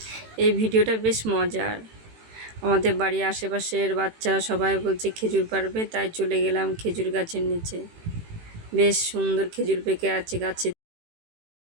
এই ভিডিওটা বেশ মজার। আমাদের বাড়ির আশেপাশের বাচ্চারা সবাই বলছে খেজুর পাড়বে, তাই চলে গেলাম খেজুর গাছের নিচে। বেশ সুন্দর খেজুর পেকে আছে গাছে।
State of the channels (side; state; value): left; late; 18 ms